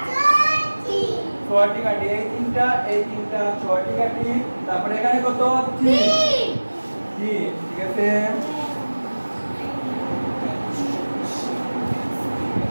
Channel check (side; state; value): both; inverted; correlation -1.00